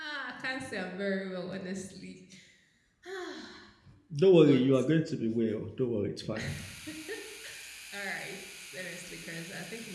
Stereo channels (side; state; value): both; identical; correlation 1.00